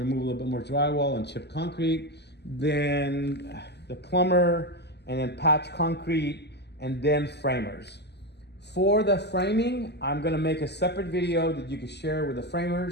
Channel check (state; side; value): late; right; 0.49 ms